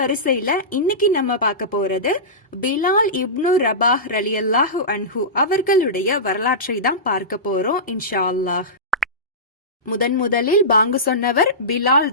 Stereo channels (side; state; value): both; normal; correlation -0.18